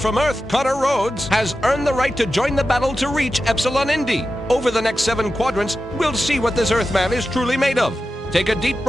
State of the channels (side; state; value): both; normal; correlation 0.92